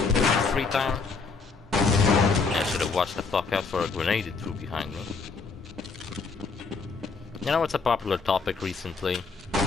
had free time? I should have watched the fuck out for a grenade it threw behind me. You know what's a popular topic recently?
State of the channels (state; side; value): quieter; right; 4.5 dB